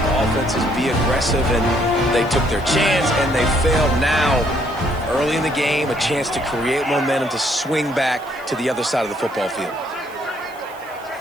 offenses be aggressive, and they took their chance, and they failed. Now, early in the game, a chance to create momentum to swing back to the other side of the football field.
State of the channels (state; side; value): noise; right; hiss, 25 dB below the sound